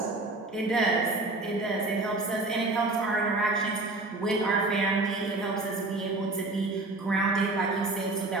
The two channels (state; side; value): quieter; left; 3.0 dB